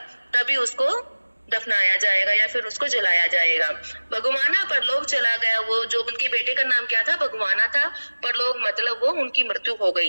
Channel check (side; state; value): both; inverted; correlation -1.00